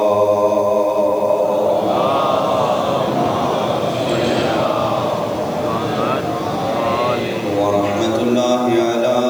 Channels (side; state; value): left; noise; hiss, 26 dB below the sound